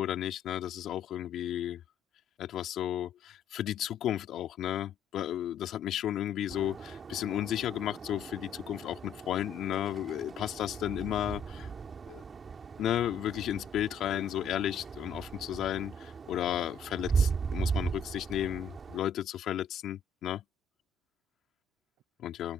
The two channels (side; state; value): right; quieter; 5.3 dB